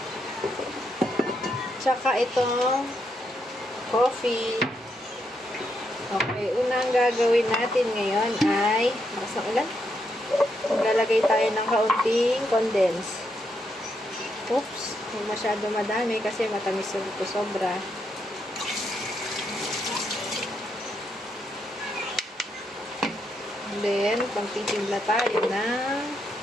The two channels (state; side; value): normal; both; correlation 0.79